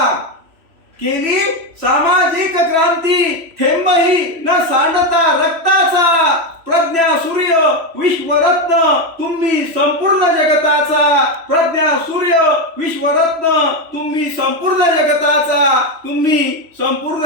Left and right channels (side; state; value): left; late; 3.0 ms